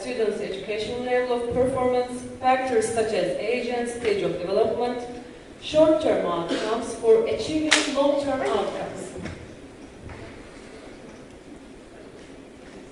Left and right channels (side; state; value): both; identical; correlation 1.00